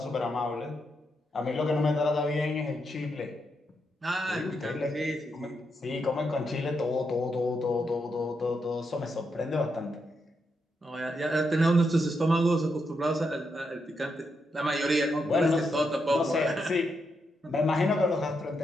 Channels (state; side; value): normal; both; correlation 0.82